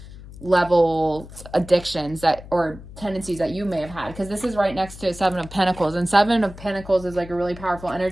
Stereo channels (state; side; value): noise; left; hum, 16 dB below the sound